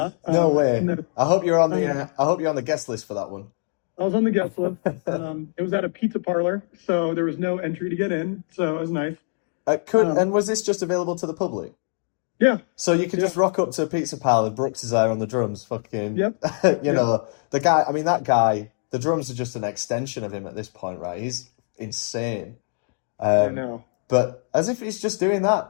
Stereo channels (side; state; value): right; silent; 57 dB below the other